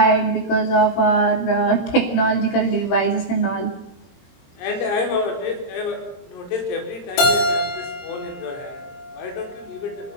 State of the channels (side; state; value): right; late; 22 ms